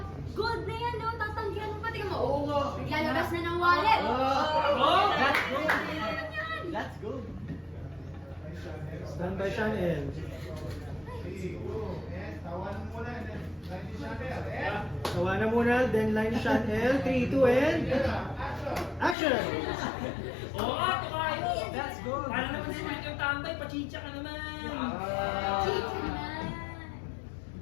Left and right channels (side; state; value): right; drops out; at 19.2 s